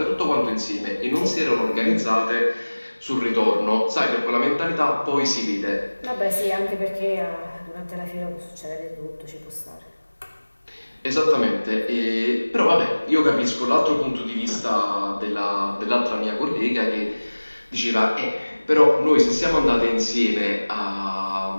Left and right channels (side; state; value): both; inverted; correlation -1.00